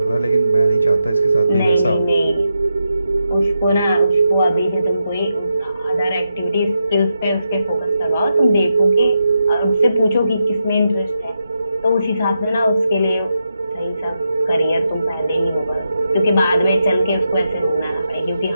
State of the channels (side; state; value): both; inverted; correlation -0.85